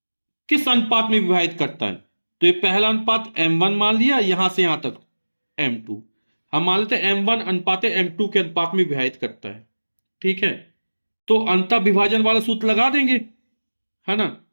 किस अनुपात में विभाजित करता है? तो ये पहला अनुपात m1 मान लिया, यहां से यहां तक m2। हम मान लेते हैं m1 अनुपात m2 के अनुपात में विभाजित करता है। ठीक है, तो अंतः विभाजन वाला सूत्र लगा देंगे, है ना।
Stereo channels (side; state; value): both; inverted; correlation -1.00